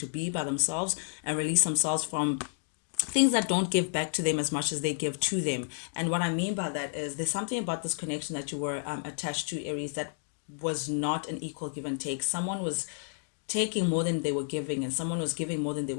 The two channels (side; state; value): right; silent; digital silence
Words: be by themselves and release themselves from things that don't give back to them as much as they give to them. And what I mean by that is, there's something about this connection that you were attached to, Aries, that was not an equal give and take. Someone was taking more than they were giving, and someone was giving more than they